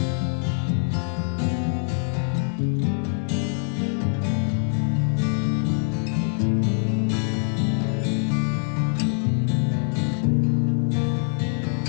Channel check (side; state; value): right; silent; 63 dB below the other